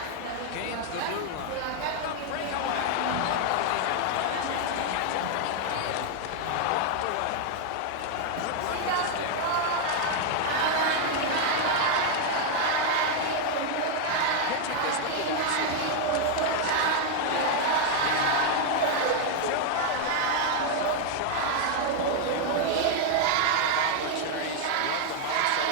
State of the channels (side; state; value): both; different; correlation 0.00